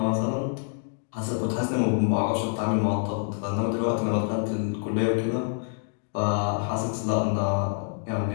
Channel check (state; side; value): silent; right; digital silence